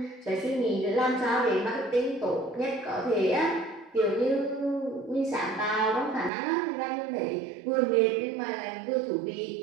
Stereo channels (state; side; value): drops out; left; at 6.3 s